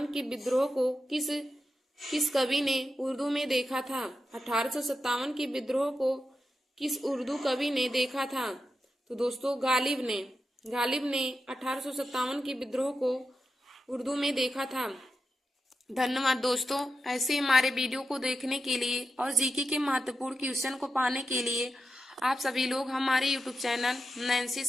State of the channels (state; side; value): normal; both; correlation 0.89